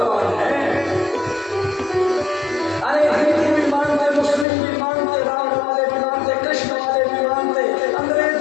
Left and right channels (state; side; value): drops out; right; at 4.5 s